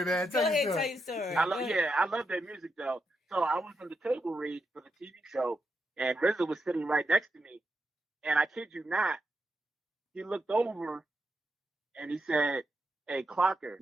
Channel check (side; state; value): both; normal; correlation 0.84